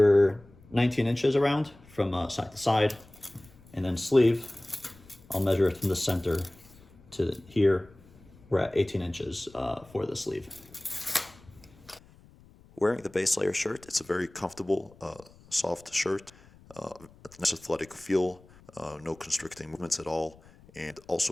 19 inches around from side to side, and then sleeve, I'll measure it from the center to here. We're at 18 inches for the sleeve. Wearing the base layer shirt, it's a very comfortable, soft shirt. A nice athletic feel, no constricting movements at all, and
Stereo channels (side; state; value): left; noise; rumble, 25 dB below the sound